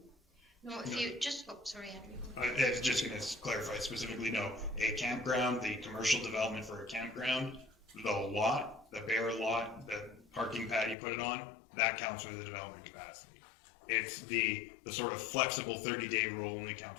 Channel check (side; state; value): right; drops out; at 11.0 s